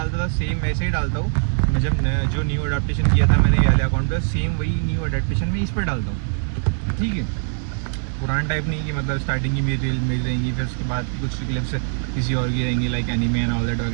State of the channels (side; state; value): left; silent; 57 dB below the other